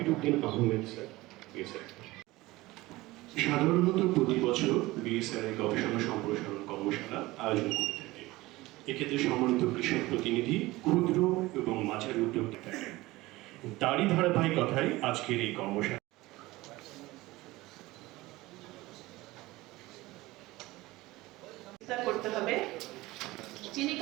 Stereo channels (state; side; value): quieter; left; 19.5 dB